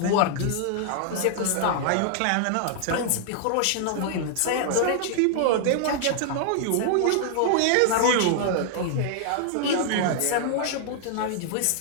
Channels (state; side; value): different; both; correlation -0.01